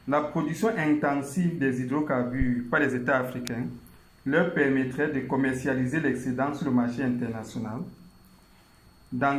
La production intensive des hydrocarbures par les États africains leur permettrait de commercialiser l'excédent sur le marché international,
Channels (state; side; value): identical; both; correlation 1.00